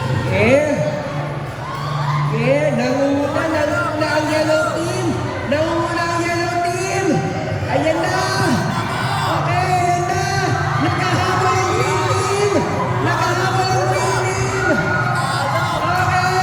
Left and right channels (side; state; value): both; identical; correlation 1.00